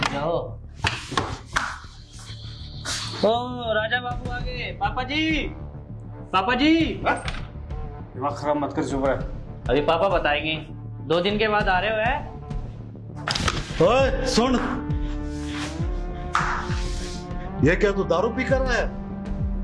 जाओ। ओ राजा बाबू आ गए। पापा जी, पापा जी। दिमाग खराब मत कर, चुप रह। अभी पापा बताएंगे। 2 दिन के बाद आ रहे हो है? ओए सुन, ये क्या तू दारू पी कर रहा है?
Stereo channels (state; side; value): identical; both; correlation 1.00